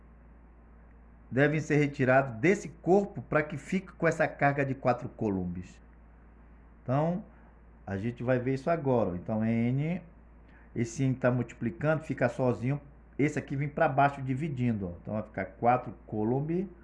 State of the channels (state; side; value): identical; both; correlation 1.00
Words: devem ser retirados desse corpo para que fique com essa carga de 4 Coulombs? Então, a gente vai ver isso agora. Então, N, esse N está multiplicando, fica sozinho. Esse aqui vem para baixo dividindo. Ó. Então, vai ficar 4 Coulomb